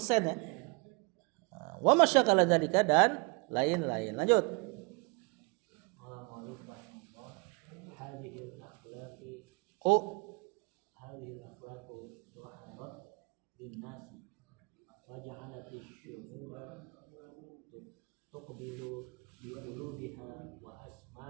ya. Wa masyakala dzalika dan lain-lain. Lanjut. هذه الأخلاق ظهرت للناس وجعلت الشعوب تقبل بقلوبها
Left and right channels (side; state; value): left; quieter; 29.6 dB